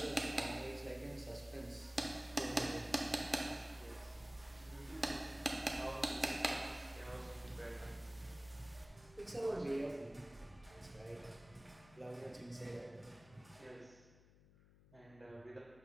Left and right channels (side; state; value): left; noise; hum, 23 dB below the sound